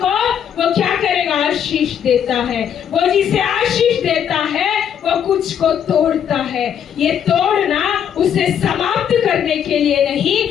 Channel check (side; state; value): right; quieter; 8.8 dB